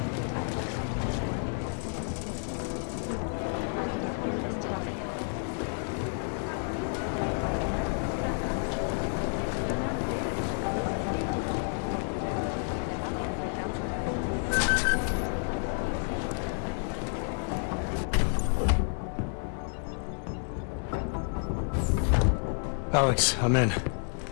Alex, I'm in.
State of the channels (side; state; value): right; silent; 58 dB below the other